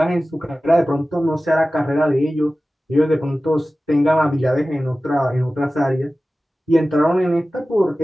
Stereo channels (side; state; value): both; normal; correlation 0.96